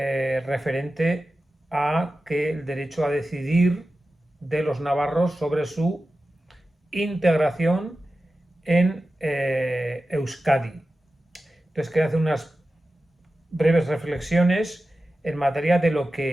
a que el derecho a decidir de los navarros sobre su integración en Euskadi. Entonces quería hacer unas breves reflexiones en materia de lo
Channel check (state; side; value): normal; both; correlation 0.94